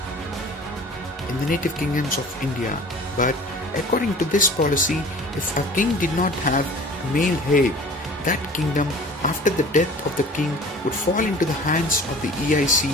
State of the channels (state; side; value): normal; both; correlation 0.44